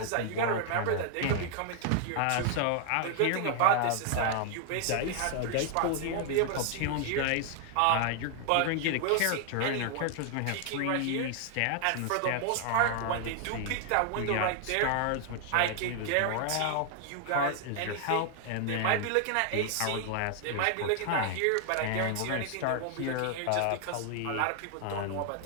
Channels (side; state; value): both; different; correlation 0.00